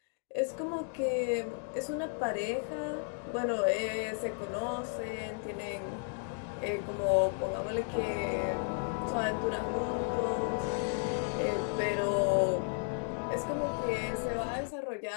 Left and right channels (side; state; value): right; silent; 55 dB below the other